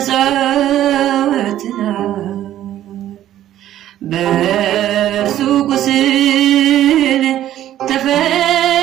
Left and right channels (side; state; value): left; quieter; 12.5 dB